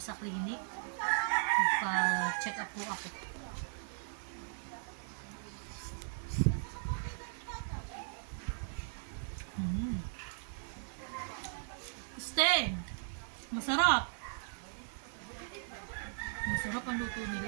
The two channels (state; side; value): silent; left; 53 dB below the other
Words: sa clinic. Magpa-check up po ako. Sten! Masarap! Masarap ang luto